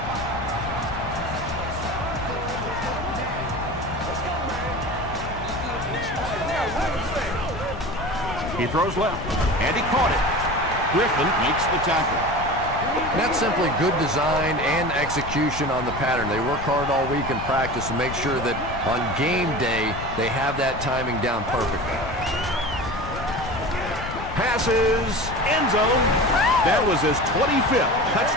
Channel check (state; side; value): noise; left; rumble, 9 dB below the sound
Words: He throws left, and he caught it. Griffin makes the tackle. That's simply good design and execution on the pattern. They work hard all week in practice to make sure that on game day they have that timing down perfectly. Passes, end zone. That was his 25th